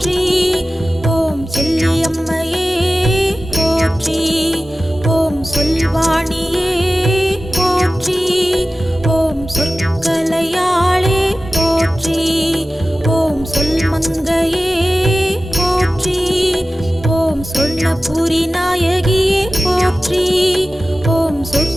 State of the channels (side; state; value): both; normal; correlation 0.95